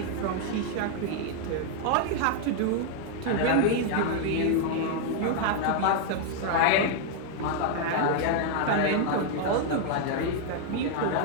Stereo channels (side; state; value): both; different; correlation 0.00